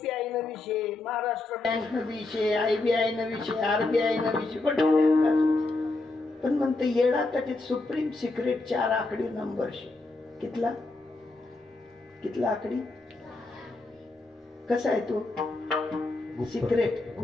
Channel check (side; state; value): right; quieter; 3.1 dB